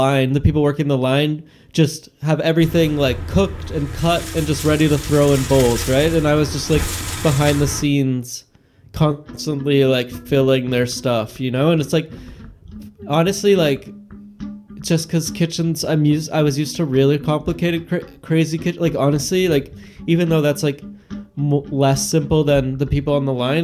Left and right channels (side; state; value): both; identical; correlation 1.00